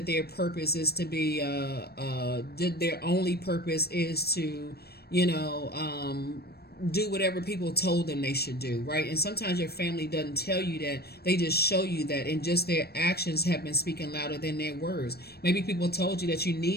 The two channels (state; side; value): late; right; 0.47 ms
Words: their purpose is to be, their only purpose is to, do whatever people told them they should do, right? And sometimes your family doesn't tell you that, they just show you that, and just their actions have been speaking louder than their words. Maybe people told you that you